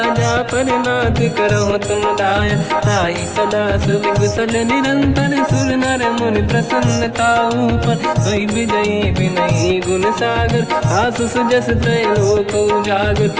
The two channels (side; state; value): both; identical; correlation 1.00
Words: जा पर नाथ करहु तुम दाया। ताई सदा सुख कुशल निरंतर सुर नर मुनि प्रसन्नता ऊपर। सोई विजयी विनयी गुण सागर आसु सुजस त्रैलोक उजागर।